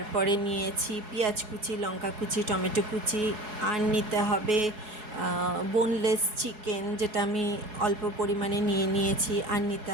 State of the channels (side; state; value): left; late; 4.7 ms